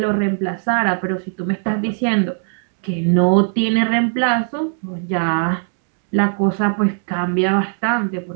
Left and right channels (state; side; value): silent; left; 65 dB below the other